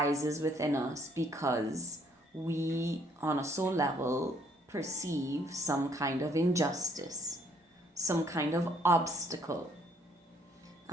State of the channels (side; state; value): both; normal; correlation 0.65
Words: within us because we, on a soul level, perceive some kind of injustice, some kind of obstacle.